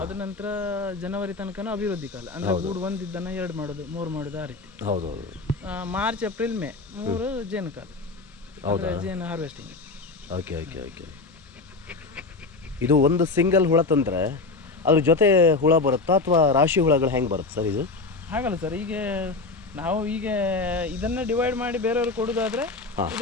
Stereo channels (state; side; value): quieter; right; 3.7 dB